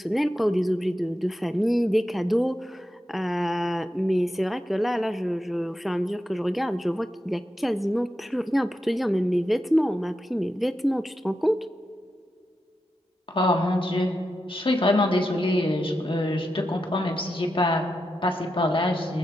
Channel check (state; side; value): normal; both; correlation 0.88